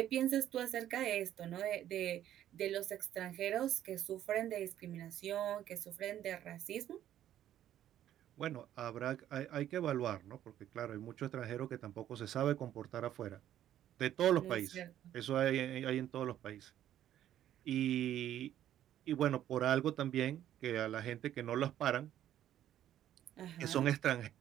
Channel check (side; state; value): left; quieter; 11.7 dB